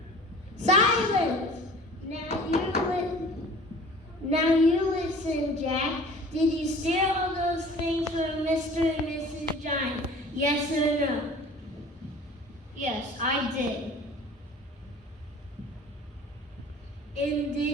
Silence! Now you listen, Jack. Did you steal all those things from Mr. and Mrs. Giant? Yes or no? Yes, I did. And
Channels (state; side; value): normal; both; correlation 0.45